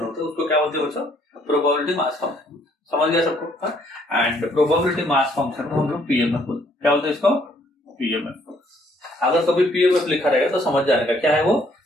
होता है उसको क्या बोलते हैं बच्चों, प्रोबेबिलिटी मास फंक्शन। समझ गया सबको। एंड प्रोबेबिलिटी मास फंक्शन को हम लोग पीएमएफ बोलते हैं। क्या बोलते हैं इसको, पीएमएफ। अगर कभी पीएमएफ लिखा रहेगा तो समझ जाएगा क्या है वो,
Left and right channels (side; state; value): both; normal; correlation 0.65